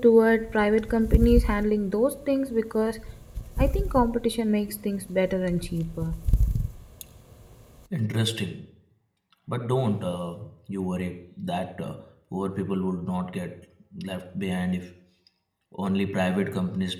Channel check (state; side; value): identical; both; correlation 1.00